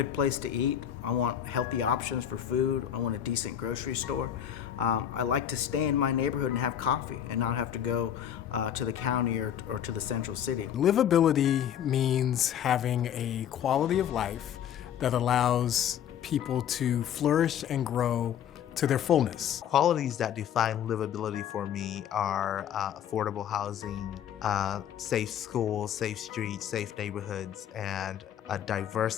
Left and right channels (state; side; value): quieter; right; 9.6 dB